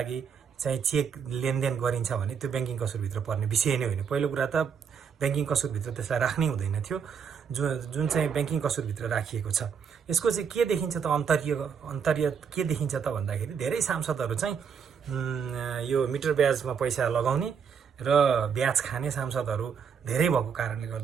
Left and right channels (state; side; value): quieter; left; 6.9 dB